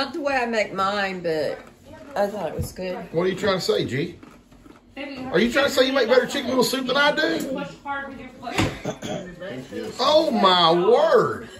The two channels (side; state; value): both; identical; correlation 1.00